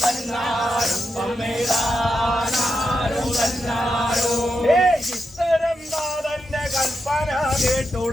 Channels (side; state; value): both; normal; correlation 0.86